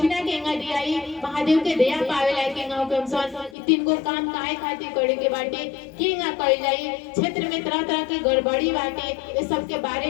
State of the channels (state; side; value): drops out; right; at 3.6 s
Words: केंगा दियाई, महादेव के दया पावे लायक केंगा हुकम सन तीन को काम काहे खातिर करे के बाटे केंगा कइल जाई। क्षेत्र में तरह तरह के गड़बड़ी बाटे, ये सब के